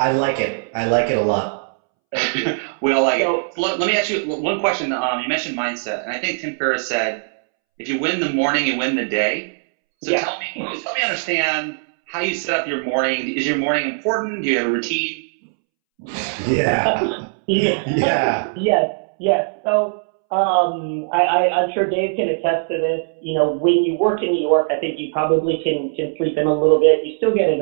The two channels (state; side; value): silent; left; 66 dB below the other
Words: want. like it. I like it a lot. Thank you. we all like it. So So let me ask you one question. You mentioned mindset, and I think Tim Ferriss said, "If you win the morning, you win the day." So yeah, help me understand how you set up your morning. Is your morning important? Do you have a routine? Yeah. yeah, Yeah. yes. So I'm sure Dave can attest to this. When you work in New York, I think you probably can sleep in a little bit. You still get in